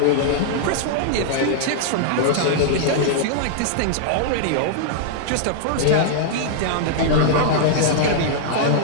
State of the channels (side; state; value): both; different; correlation -0.01